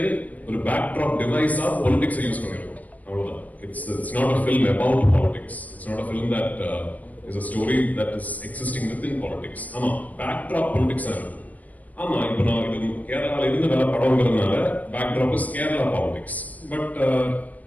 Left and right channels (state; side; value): late; right; 0.077 ms